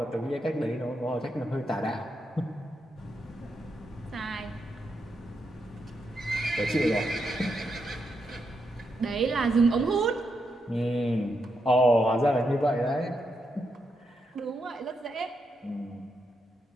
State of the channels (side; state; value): both; normal; correlation 0.83